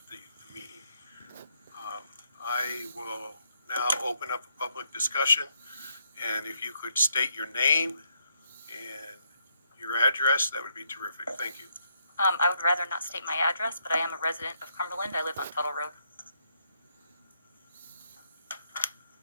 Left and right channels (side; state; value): both; inverted; correlation -0.76